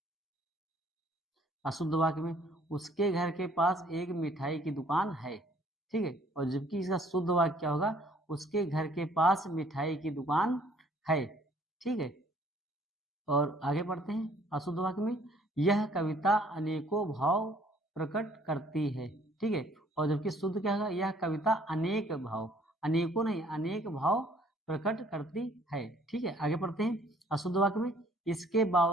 अशुद्ध वाक्य में, उसके घर के पास एक मिठाई की दुकान है। ठीक है, और जबकि इसका शुद्ध वाक्य क्या होगा, उसके घर के पास मिठाई की दुकान है। ठीक है, और आगे बढ़ते हैं अशुद्ध वाक्य में, यह कविता अनेकों भाव प्रकट करती है। ठीक है, और जबकि शुद्ध क्या होगा, यह कविता अनेक भाव, अनेकों नहीं अनेक भाव प्रकट करती है। ठीक है, आगे बढ़ते हैं अशुद्ध वाक्य में, इसके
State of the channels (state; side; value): normal; both; correlation 0.59